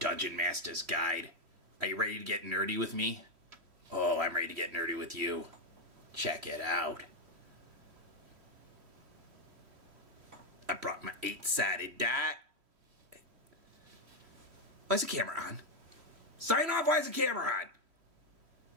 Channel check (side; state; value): left; late; 3.1 ms